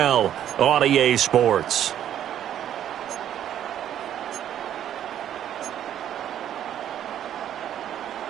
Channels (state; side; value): quieter; left; 10.6 dB